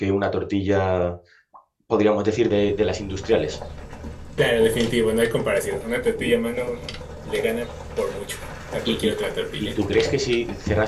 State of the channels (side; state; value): both; identical; correlation 1.00